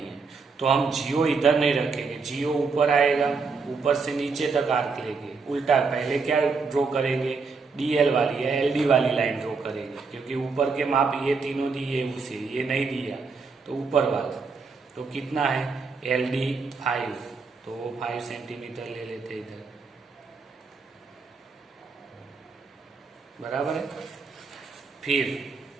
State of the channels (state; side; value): quieter; left; 4.7 dB